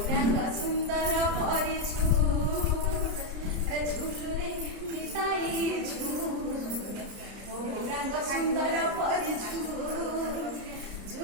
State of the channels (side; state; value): left; late; 30 ms